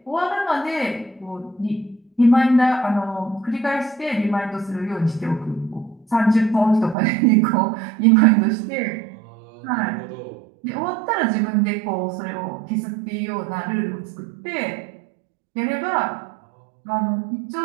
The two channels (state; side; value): drops out; left; at 7.0 s